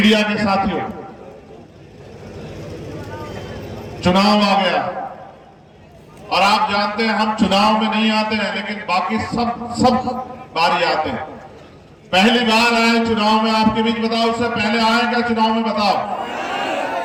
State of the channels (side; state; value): both; identical; correlation 1.00